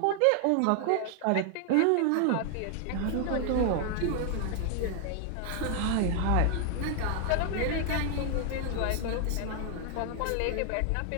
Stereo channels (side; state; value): both; different; correlation 0.00